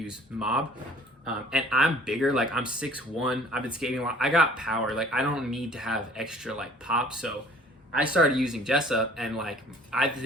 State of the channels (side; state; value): both; normal; correlation 0.53